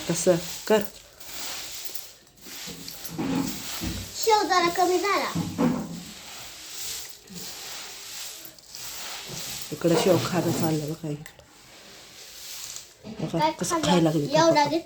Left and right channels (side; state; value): both; identical; correlation 1.00